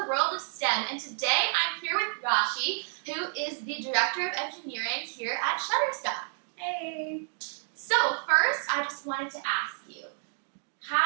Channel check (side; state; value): left; silent; 57 dB below the other